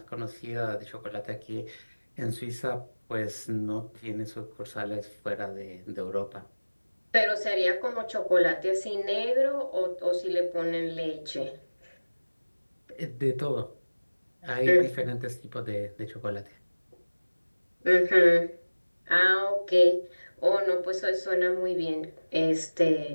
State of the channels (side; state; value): both; inverted; correlation -1.00